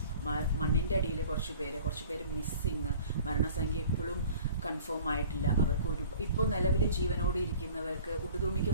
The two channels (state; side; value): inverted; both; correlation -0.47